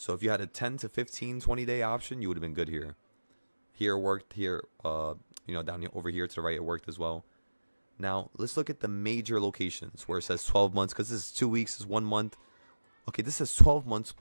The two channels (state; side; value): inverted; both; correlation -1.00